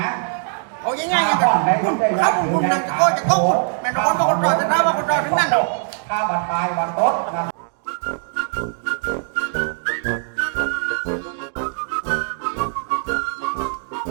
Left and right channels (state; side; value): silent; left; 65 dB below the other